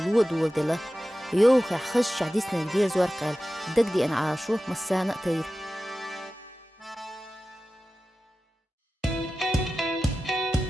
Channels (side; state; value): both; normal; correlation 0.94